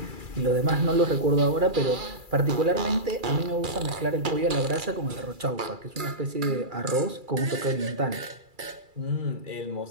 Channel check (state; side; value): late; left; 2.3 ms